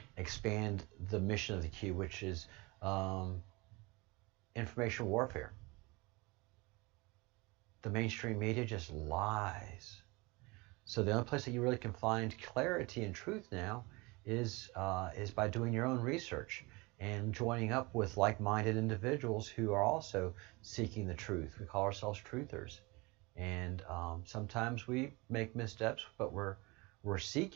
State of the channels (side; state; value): left; quieter; 25.3 dB